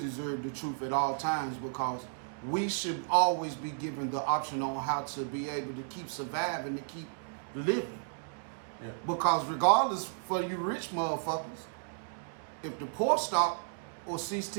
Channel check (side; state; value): left; silent; digital silence